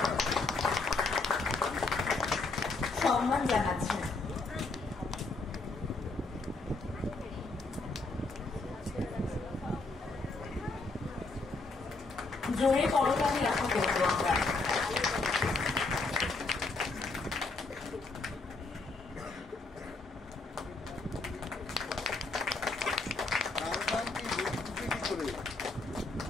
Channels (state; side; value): quieter; right; 3.5 dB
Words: সম্মান জানাচ্ছেন। জোরে করতালি আশা করবো আমরা।